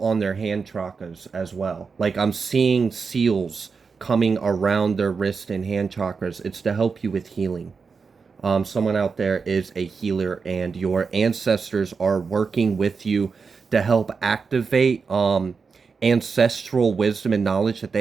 on their hand chakras as well. Like I'm seeing seals coming around their wrist and hand chakras. It's to help you with healing. Someone out there is a healer, and your ancestors are working with you to help activate ancestral wisdom and knowledge that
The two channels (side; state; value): left; quieter; 5.1 dB